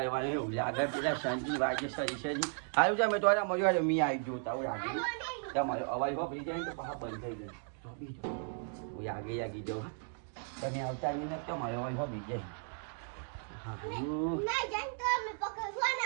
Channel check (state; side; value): silent; left; 54 dB below the other